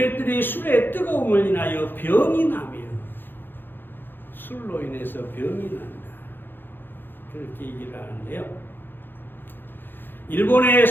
술의 뜨거움을 인하여 병이 나며 술로 인해서 병이 난다. 그렇게 얘기를 하는데요. 일본의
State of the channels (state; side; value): late; right; 0.098 ms